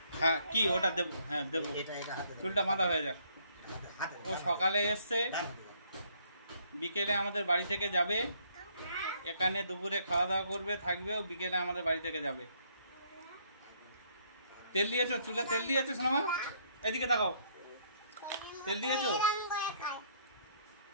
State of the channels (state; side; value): inverted; both; correlation -0.67